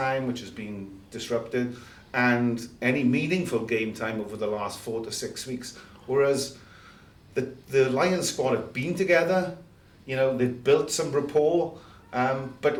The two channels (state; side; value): identical; both; correlation 1.00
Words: which has been disrupted, and any meaningful game time over the last 4 to 6 weeks. Whereas the Lions squad have been together, you know, they've built some rapport, but